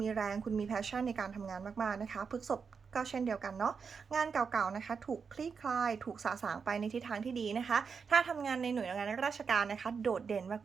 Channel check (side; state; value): left; quieter; 5.8 dB